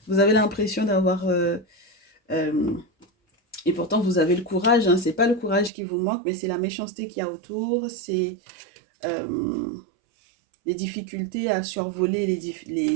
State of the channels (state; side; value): drops out; left; at 5.7 s